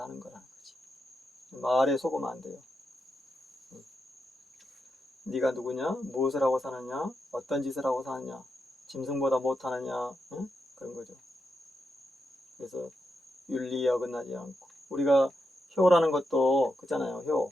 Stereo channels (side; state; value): both; normal; correlation 0.85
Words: 하는 거라는 거지. 말에 속으면 안 돼요. 네가 누구냐? 무엇을 하고 사느냐? 어떤 짓을 하고 사느냐? 짐승보다 못하느냐? 그런 거죠. 그래서 윤리에 어긋나지 않고 우리가 효라는 것도 그잖아요. 효